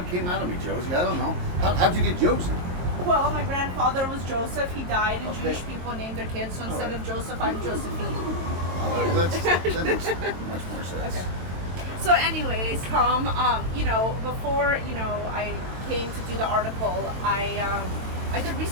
came out of me, Josie. I don't know. How'd you get Josie? Well, my grandfather was Joseph. He died, and Jewish people named their kids. So instead of Joseph, I'm Josephine. That makes much more sense. Okay. So anyways, Tom, before, I came to do the article, I did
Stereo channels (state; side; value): late; left; 22 ms